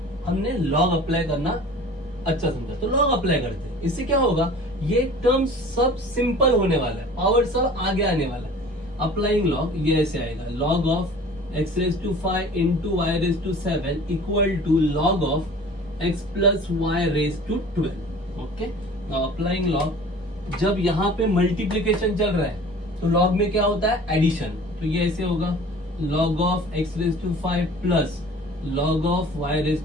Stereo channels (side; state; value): both; normal; correlation 0.44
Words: हमने लॉग अप्लाई करना अच्छा समझा, तो लॉग अप्लाई करते हैं। इससे क्या होगा, ये टर्म सब सिंपल होने वाला है, पावर सब आगे आने वाला है। अप्लाइंग लॉग ये ऐसे आएगा, log of x raised to 5 into y raised to 7 equal to log of x plus y raised to 12। Okay, now applying log, जब यहाँ पे मल्टीप्लीकेशन चल रहा है तो लॉग में क्या होता है, एडिशन, तो ये ऐसे होगा log of x raised to 5 plus log of y raised